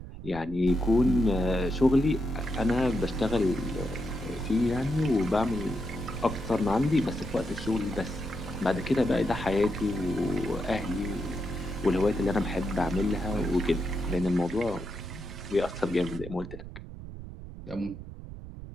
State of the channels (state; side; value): noise; right; rumble, 12 dB below the sound